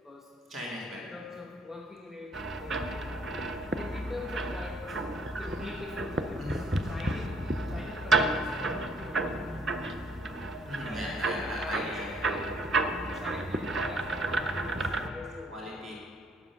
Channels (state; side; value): normal; both; correlation 0.64